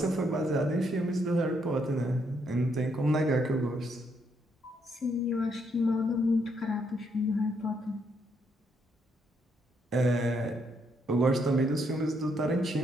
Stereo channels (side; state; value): both; normal; correlation 0.74